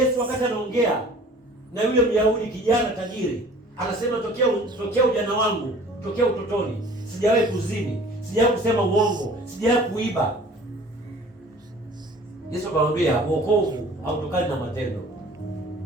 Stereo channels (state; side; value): normal; both; correlation 0.48